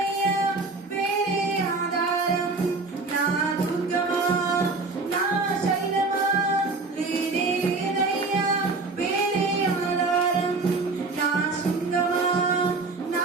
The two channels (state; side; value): quieter; left; 3.7 dB